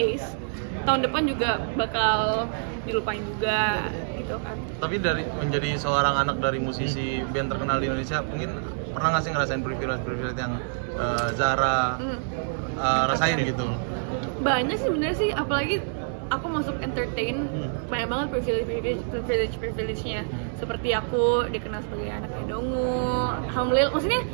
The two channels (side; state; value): left; silent; digital silence